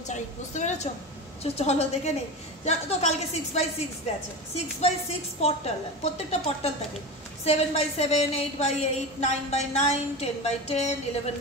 চাই, বুঝতে পেরেছ? চলো দেখে নেই। তো কালকে 6x6 গেছে। 6x6 পর্টাল, প্রত্যেকটা পর্টাল থাকে 7x7, 8x8, 9x9, 10x10,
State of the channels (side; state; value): both; normal; correlation 0.25